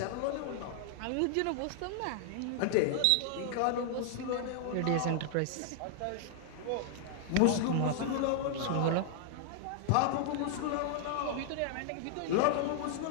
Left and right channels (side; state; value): both; different; correlation 0.00